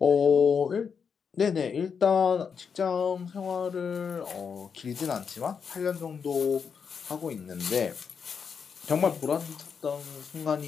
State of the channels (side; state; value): right; quieter; 6.4 dB